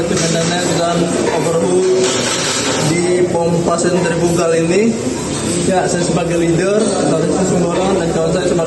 maintenance dan overhaul di pompa sentrifugal ini. Ya, saya sebagai leader, Taufik Sumborong, dan kawan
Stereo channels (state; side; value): identical; both; correlation 1.00